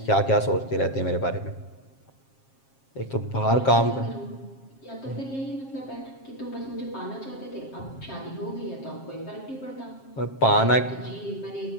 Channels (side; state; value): right; late; 7.5 ms